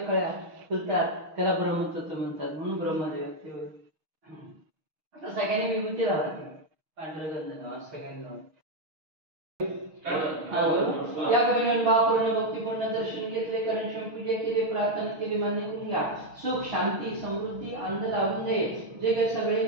कळ्या फुलतात, त्याला ब्रह्मतत्व म्हणतात म्हणून ब्रह्मदेव. आता सगळ्यांनी विभूती लावायची, पांढरं गंध लावा सगळ्यांनी लावा. या कवीने भावपूर्ण भक्तीपूर्ण दर्शन घेतले, कारण पूजा केली, प्रार्थना केली, मान्य करून घ्या. सुख शांती समृद्धी आनंद लावून दे. जे काही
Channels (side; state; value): left; late; 6.4 ms